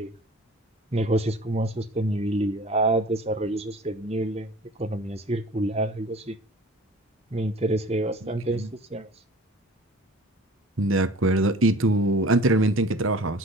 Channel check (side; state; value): both; normal; correlation 0.44